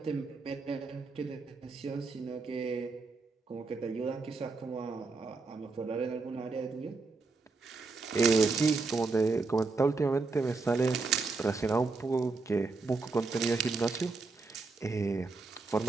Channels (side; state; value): left; quieter; 3.9 dB